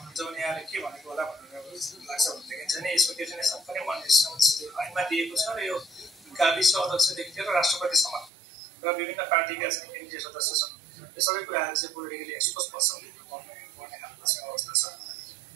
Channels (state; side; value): drops out; left; at 8.3 s